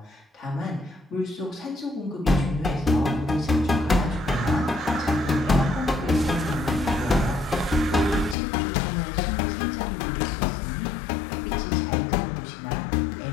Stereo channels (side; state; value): right; drops out; at 8.3 s